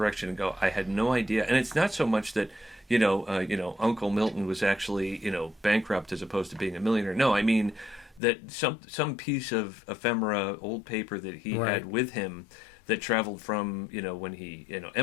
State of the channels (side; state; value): right; drops out; at 8.2 s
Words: and go, I had no idea. And it's not so much that Uncle Milton was actually bankrupt as opposed to being a millionaire. No, I mean that some piece of ephemera, old paper that he had with him that traveled from when he